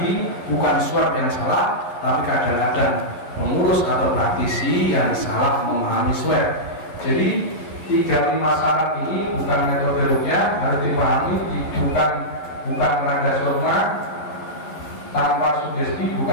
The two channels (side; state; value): right; late; 11 ms